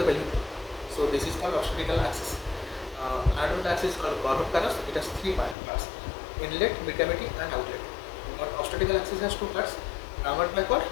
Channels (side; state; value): right; drops out; at 5.6 s